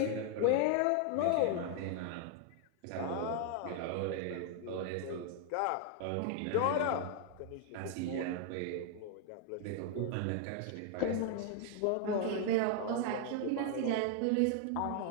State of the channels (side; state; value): both; different; correlation 0.00